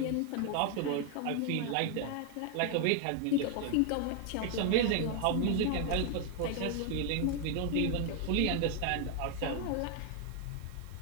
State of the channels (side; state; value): both; different; correlation 0.01